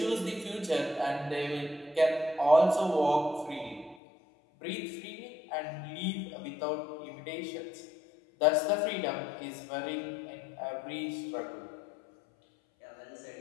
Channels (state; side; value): drops out; right; at 4.0 s